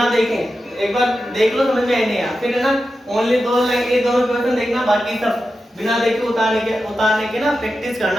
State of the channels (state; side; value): normal; both; correlation 0.91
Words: देखे एक बार देख लो, समझ में आए नहीं यार, फिर है ना ओनली दो क्वेश्चन देखना, बाकी सब बिना देखे उतारने के ना प्रैक्टिस